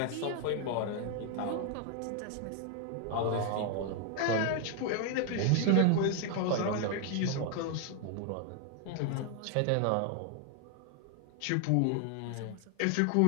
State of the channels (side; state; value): both; different; correlation 0.00